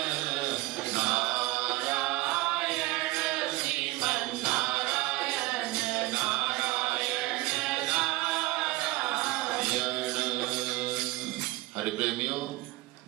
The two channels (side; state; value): left; quieter; 19.3 dB